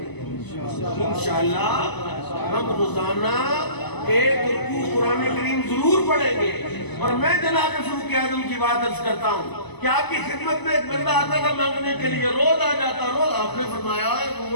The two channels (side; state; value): right; late; 0.99 ms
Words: انشاءاللہ ہم روزانہ ایک رکوع قرآن کریم ضرور پڑھیں گے. اور میں جناب فاروق اعظم کی بات عرض کرتا ہوں کہ آپ کی خدمت میں ایک بندہ آتا تھا مانگنے کے لیے, روز آ جاتا. روز آپ نے فرمایا ہے